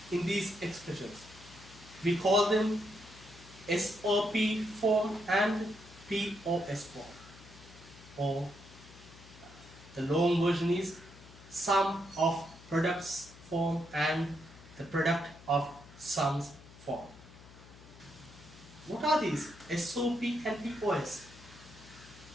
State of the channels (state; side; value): noise; left; hum, 20 dB below the sound